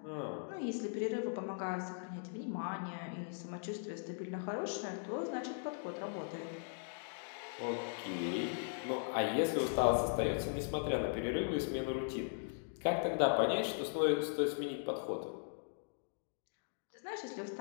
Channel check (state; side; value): silent; right; digital silence